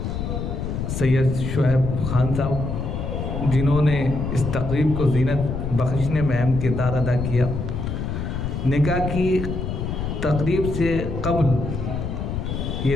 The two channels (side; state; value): left; noise; rumble, 3 dB below the sound